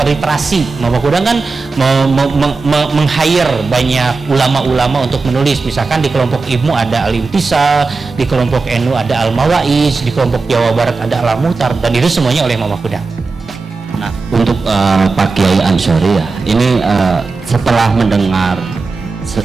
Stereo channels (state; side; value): quieter; left; 4.1 dB